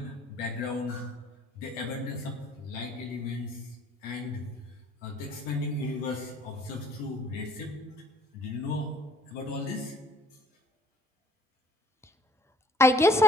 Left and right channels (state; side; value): normal; both; correlation 0.57